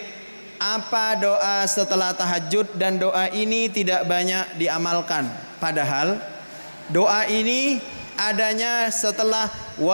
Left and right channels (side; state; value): both; inverted; correlation -1.00